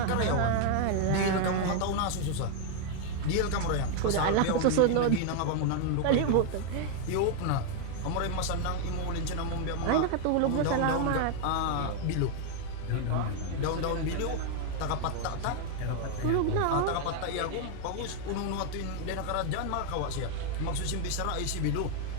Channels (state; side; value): different; both; correlation 0.00